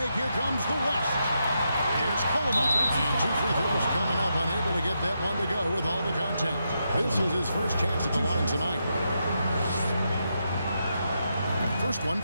Here comes the West. Here's Coleman. And 2 free throws coming up. Unable to get that one to go with all the contact. This is his first chance at the line tonight. First one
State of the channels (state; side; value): inverted; both; correlation -0.83